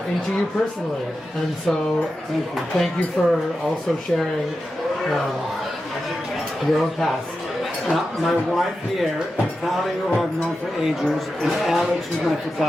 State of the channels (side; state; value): both; normal; correlation 0.91